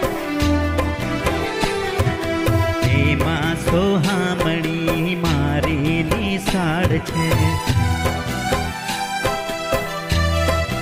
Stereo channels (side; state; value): both; identical; correlation 1.00